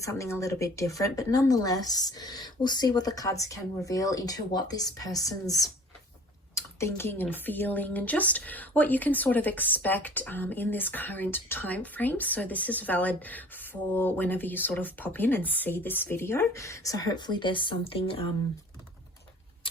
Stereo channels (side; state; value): both; normal; correlation 0.47